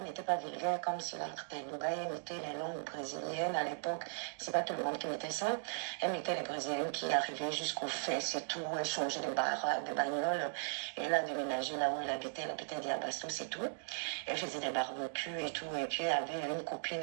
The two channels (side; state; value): left; silent; digital silence